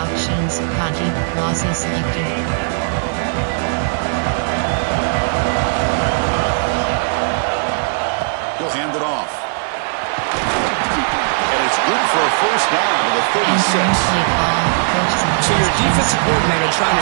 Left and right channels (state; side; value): silent; left; 68 dB below the other